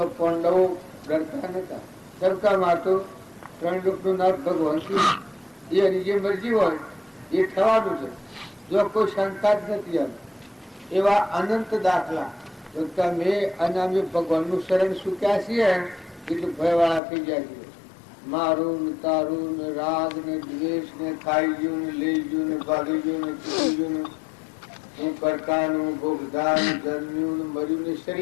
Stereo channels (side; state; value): right; drops out; at 17.0 s